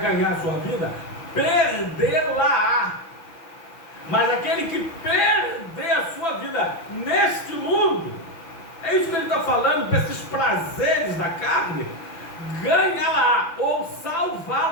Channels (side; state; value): right; late; 5.9 ms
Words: ganhar a sua vida, perdê-la. Mas aquele que perder a sua vida neste mundo, é isso que ele está falando, para esses prazeres da carne, ganha-la ou